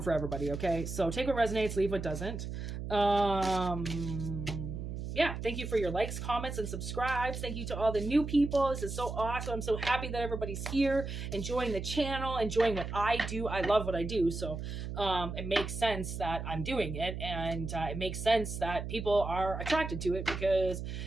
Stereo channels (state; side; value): noise; right; hum, 6 dB below the sound